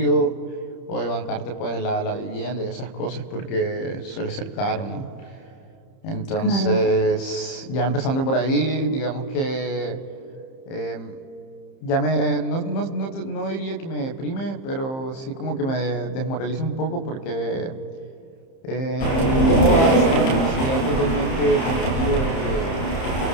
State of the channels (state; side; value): late; right; 30 ms